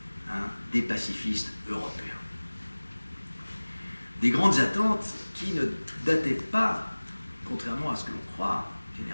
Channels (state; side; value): inverted; both; correlation -1.00